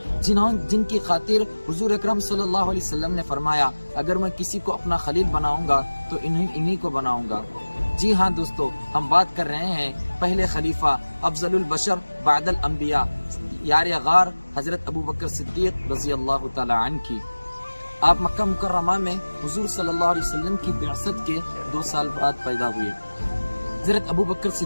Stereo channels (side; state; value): both; inverted; correlation -1.00